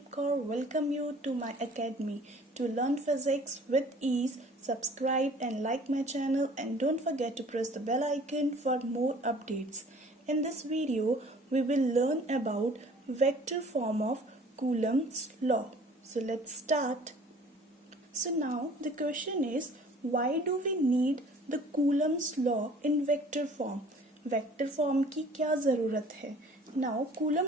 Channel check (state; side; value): normal; both; correlation 0.51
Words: Kaur. Welcome you to my academy. To learn physics with ease, subscribe and like my channel and don't forget to press the bell icon for more updates. In this video, we will learn about vector form of Coulomb's law. So let's start. So now the question is, why do we need the Coulomb's law in vector form? Vector form की क्या ज़रूरत है? नाउ कूलम